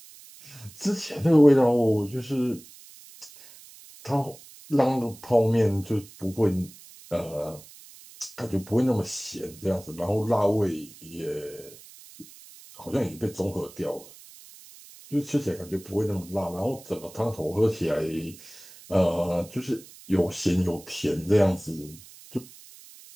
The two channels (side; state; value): right; noise; hiss, 20 dB below the sound